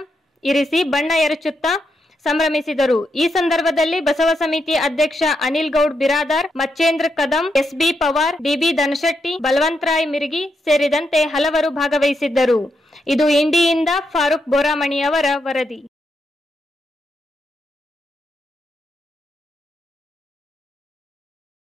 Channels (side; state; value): both; normal; correlation 0.82